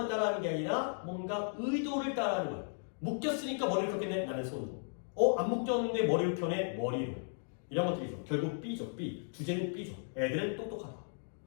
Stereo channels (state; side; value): silent; right; digital silence